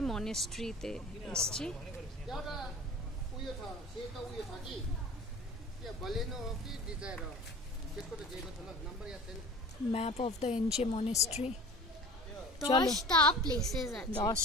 মনেস্ট্রিতে এসেছি। Map of the Enchey monastery.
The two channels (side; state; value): both; normal; correlation 0.40